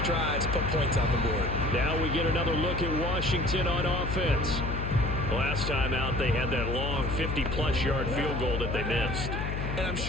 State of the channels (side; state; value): left; noise; hum, 3 dB below the sound